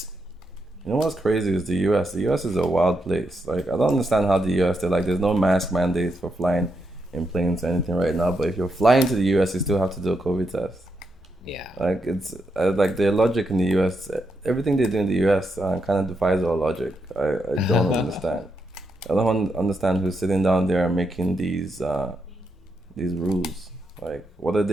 You know what's crazy is the U.S. The U.S. is a wild place. Like, I don't understand how the U.S. They're like, there's no mask mandates for flying in planes or anything right now. But if you're flying to the U.S., you still have to do a COVID test. yeah. Like, it's like their logic in the U.S. Everything they do in the U.S. Kind of defies our logic. I don't understand. I don't understand who's sitting down there and making these rules. Like, what are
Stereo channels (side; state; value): both; normal; correlation 0.82